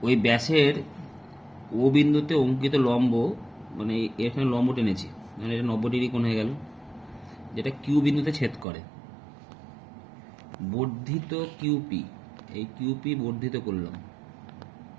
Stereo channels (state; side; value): drops out; left; at 8.7 s